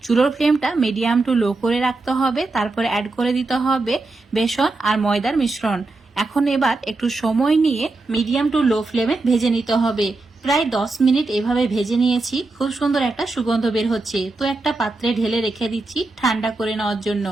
চুলোর ফ্লেমটা মিডিয়াম টু লো করে রাখতে হবে। তারপরে অ্যাড করে দিতে হবে বেসন আর ময়দার মিশ্রণ। এখন এবার একটু সময় নিয়ে মিডিয়াম টু লো ফ্লেমে ভেজে নিতে হবে। প্রায় 10 মিনিট এভাবে ভেজে নিয়েছি। খুব সুন্দর একটা সুগন্ধ বের হচ্ছে। তো একটা পাত্রে ঢেলে রেখে দিচ্ছি ঠান্ডা করে নেওয়ার জন্য।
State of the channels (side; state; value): left; quieter; 3.3 dB